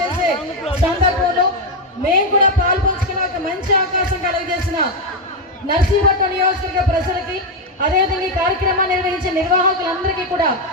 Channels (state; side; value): normal; both; correlation 0.05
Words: సందర్భంలో మేము కూడా పాల్పంచుకునే ఒక మంచి అవకాశం కలిగజేసిన నర్సీపట్నం నియోజకవర్గ ప్రజలకి, అదేవిధంగా ఈ కార్యక్రమాన్ని నిర్వహించే నిర్వాహకులందరికీ కూడా